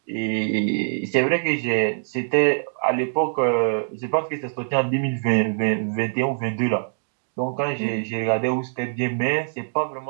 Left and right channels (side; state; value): left; silent; digital silence